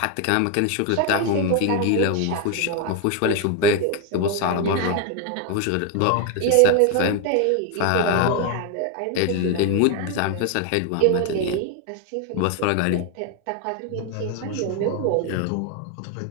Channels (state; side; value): different; both; correlation 0.01